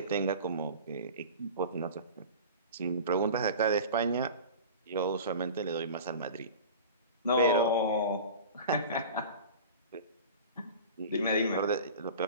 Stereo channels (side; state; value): both; inverted; correlation -0.36